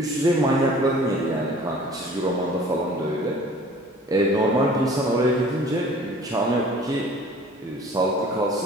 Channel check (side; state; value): both; normal; correlation 0.48